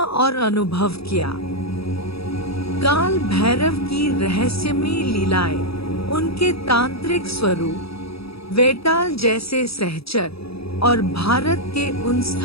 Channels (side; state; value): right; late; 0.77 ms